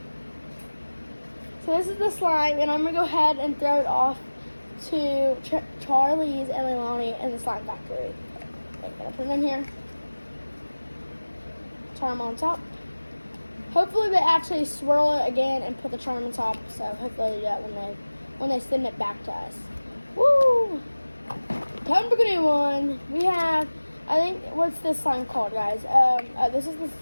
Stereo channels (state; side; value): inverted; both; correlation -1.00